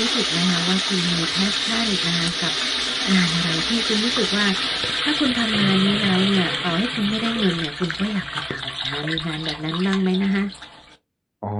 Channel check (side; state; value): both; identical; correlation 1.00